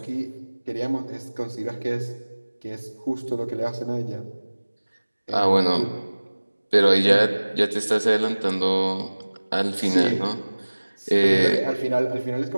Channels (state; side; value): inverted; both; correlation -1.00